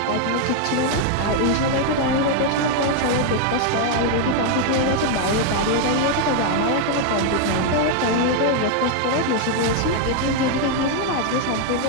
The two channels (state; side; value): different; both; correlation 0.00